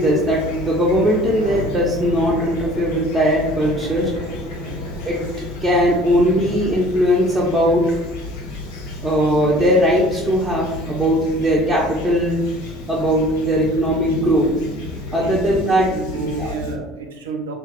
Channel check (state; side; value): normal; both; correlation 0.50